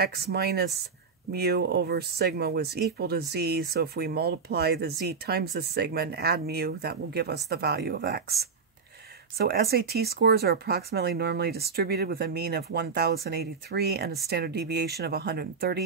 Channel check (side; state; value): left; quieter; 5.4 dB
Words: minus mu over sigma was equal to z, so if we multiply the z times the sigma and add mu, that will give us the value of x. So SAT scores are approximately normally distributed with a mean of 1,083 and a standard deviation of